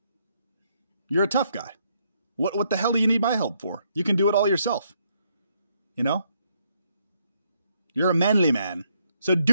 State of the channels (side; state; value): both; inverted; correlation -0.74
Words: You're a tough guy. What the hell do you need my help for? You can do it all yourself. You know? You're a manly man. So